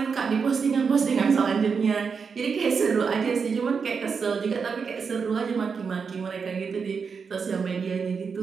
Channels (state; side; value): quieter; left; 5.7 dB